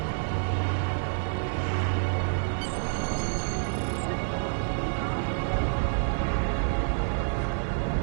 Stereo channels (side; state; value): left; silent; 59 dB below the other